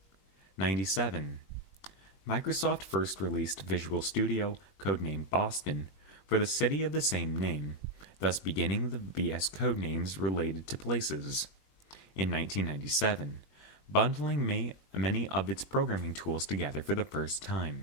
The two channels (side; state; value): right; late; 21 ms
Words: 97. Microsoft first released Visual Studio, codenamed Boston, for the city of the same name, thus beginning the VS codenames related to places. In 1997, bundling many of its programming tools together for the first